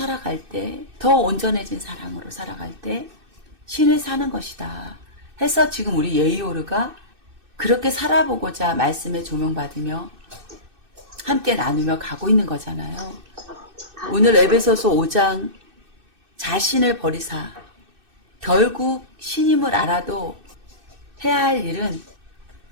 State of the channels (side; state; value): left; late; 2.6 ms